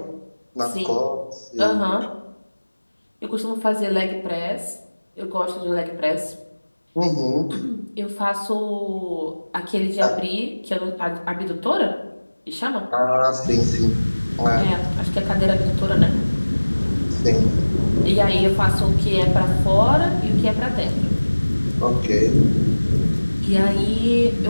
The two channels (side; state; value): both; inverted; correlation -1.00